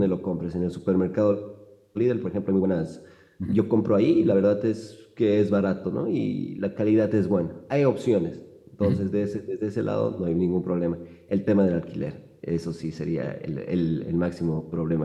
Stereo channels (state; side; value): identical; both; correlation 1.00